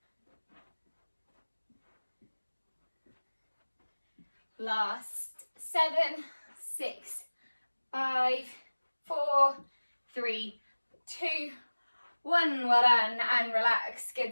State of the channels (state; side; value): inverted; both; correlation -1.00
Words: Last 7, 6, 5, 4, 3, 2, 1. Well done, and relax. Good